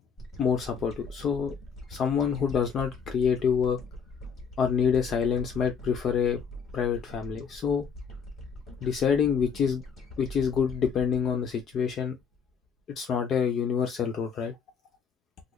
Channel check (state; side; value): quieter; right; 6.5 dB